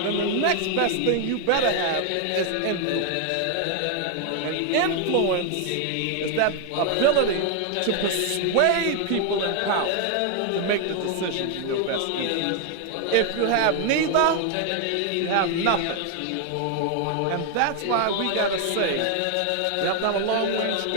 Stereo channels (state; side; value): different; both; correlation 0.01